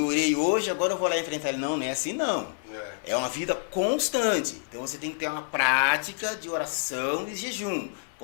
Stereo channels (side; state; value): right; silent; digital silence